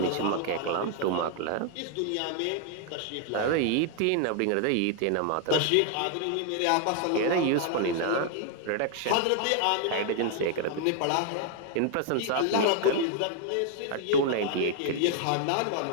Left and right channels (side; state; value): both; different; correlation 0.00